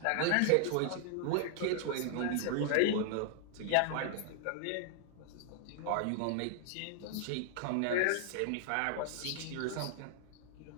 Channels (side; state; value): both; different; correlation 0.00